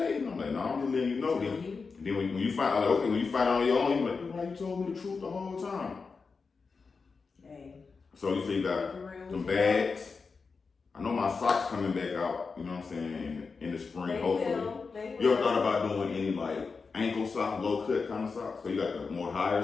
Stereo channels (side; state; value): right; quieter; 4.8 dB